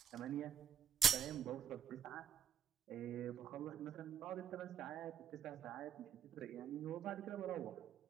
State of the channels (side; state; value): left; quieter; 8.4 dB